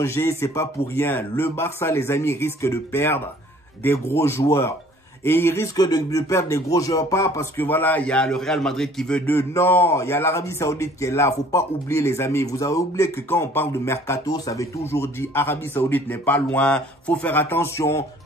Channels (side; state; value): both; normal; correlation 0.54